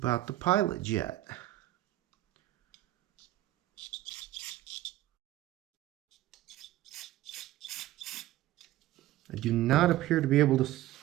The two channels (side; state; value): left; quieter; 15.1 dB